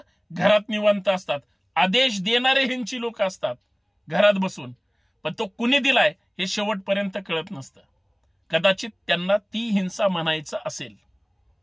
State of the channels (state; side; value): identical; both; correlation 1.00